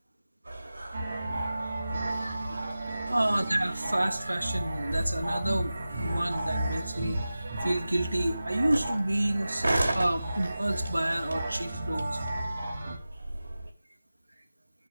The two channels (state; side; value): inverted; both; correlation -0.95